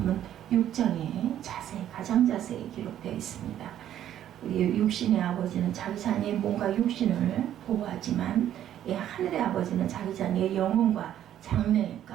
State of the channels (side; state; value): left; quieter; 11.2 dB